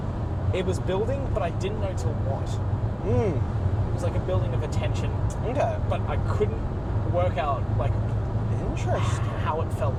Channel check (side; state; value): both; identical; correlation 1.00